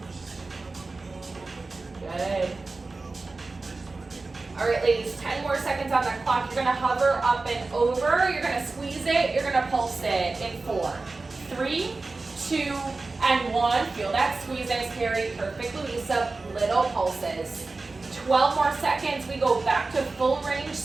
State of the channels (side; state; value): left; quieter; 3.6 dB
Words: Good. All right, ladies, 10 more seconds on the clock. You're gonna hover up and over. You're gonna squeeze it. You're gonna pulse it in 4, 3, 2, and 1. Feel that squeeze. Nice carry. Perfect, Luisa. Little pulses. 12 more seconds. We go back to full range,